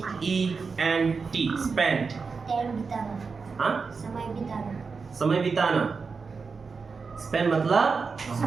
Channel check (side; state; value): left; quieter; 4.9 dB